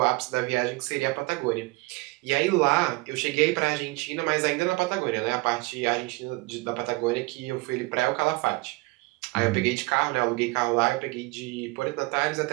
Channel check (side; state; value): left; quieter; 24.0 dB